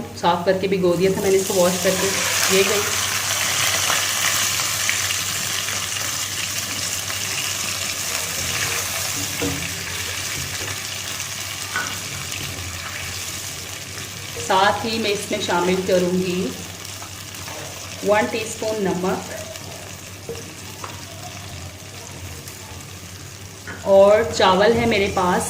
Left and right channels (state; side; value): identical; both; correlation 1.00